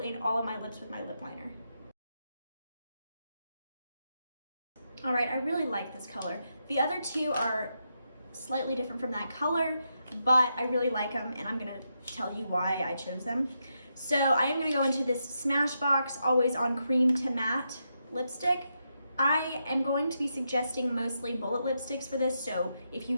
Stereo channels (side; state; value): both; inverted; correlation -0.83